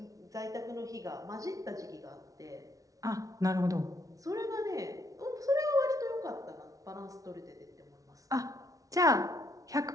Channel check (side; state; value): left; late; 0.17 ms